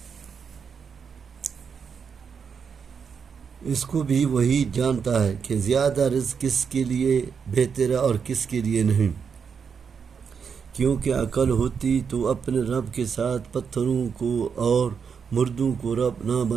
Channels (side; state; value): left; quieter; 6.4 dB